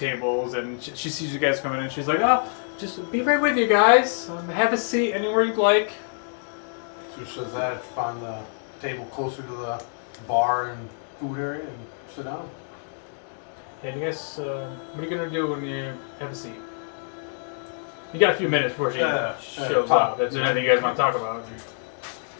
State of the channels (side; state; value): right; silent; digital silence